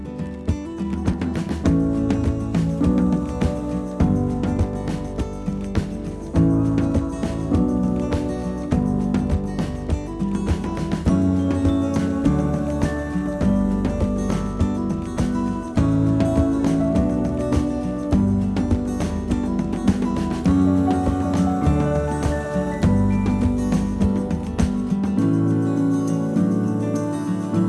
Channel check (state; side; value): identical; both; correlation 1.00